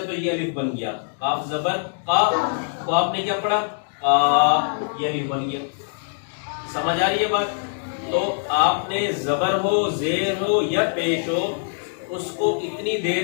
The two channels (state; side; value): silent; right; digital silence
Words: تو یہ الف بن گیا. کاف زبر کا کو آپ نے کیا پڑھا؟ کا. یہ الف بن گیا. سمجھ آ رہی ہے بات؟ تو آپ نے زبر ہو، زیر ہو یا پیش ہو، اس کو اتنی